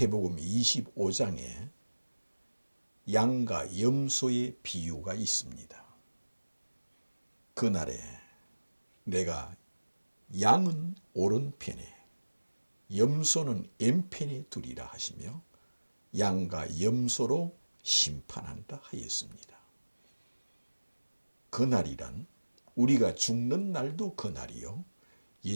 25장에 양과 염소의 비유가 있습니다. 그날에 내가 양은 오른편에 염소는 왼편에 두리라 하시며 양과 염소로 심판한다 하였습니다. 그날이란 우리가 죽는 날도 그날이요,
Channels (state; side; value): inverted; both; correlation -1.00